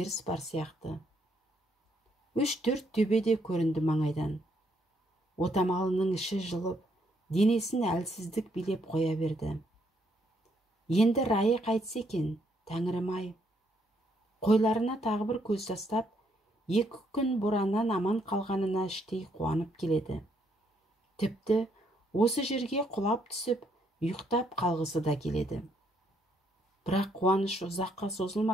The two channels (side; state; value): both; normal; correlation 0.72